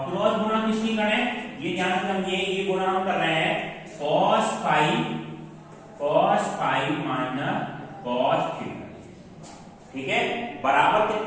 क्रॉस गुणा किसकी करें, ये ध्यान से समझिए, ये गुणा हम कर रहे हैं cos phi minus cos theta. ठीक है, बराबर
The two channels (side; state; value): both; identical; correlation 1.00